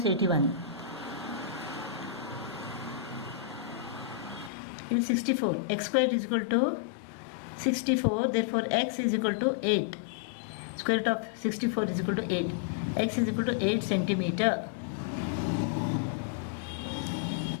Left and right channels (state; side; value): drops out; right; at 4.5 s